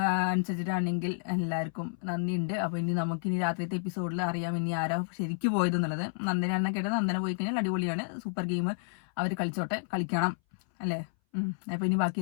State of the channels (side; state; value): right; silent; 57 dB below the other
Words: അനുസരിച്ചിട്ടാണെങ്കിൽ എല്ലാവർക്കും നന്ദിയുണ്ട്. അപ്പൊ ഇനി രാത്രിയത്തെ എപ്പിസോഡിൽ അറിയാം ഇനി ആരാ ശരിക്കും പോയതെന്നുള്ളത്. നന്ദനാണെന്ന് കേട്ടത്. നന്ദന പോയി കഴിഞ്ഞാൽ അടിപൊളിയാണ്, സൂപ്പർ ഗെയിം അവർ കളിച്ചോട്ടെ, കളിക്കണം അല്ലേ. അപ്പൊ ഇനി ബാക്കി